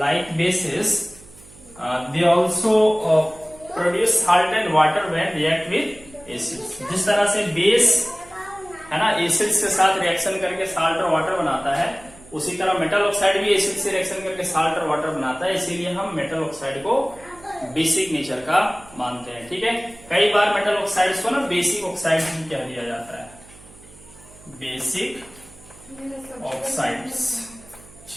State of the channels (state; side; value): noise; right; hum, 23 dB below the sound